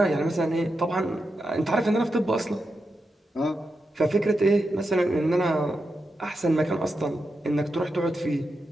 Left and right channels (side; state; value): both; normal; correlation 0.87